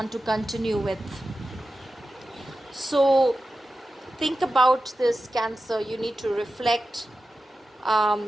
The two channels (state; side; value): normal; both; correlation 0.93